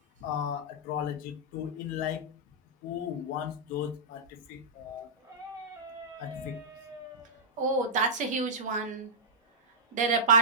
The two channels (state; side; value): normal; both; correlation -0.12